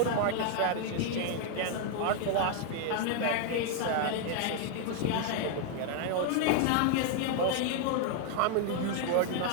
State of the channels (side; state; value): both; different; correlation 0.00